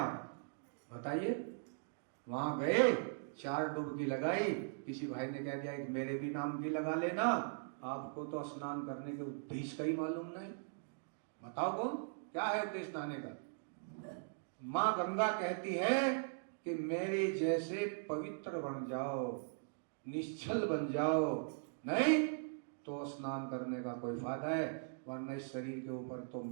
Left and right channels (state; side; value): silent; left; digital silence